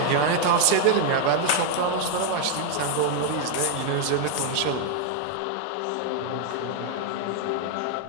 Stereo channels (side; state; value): both; different; correlation 0.00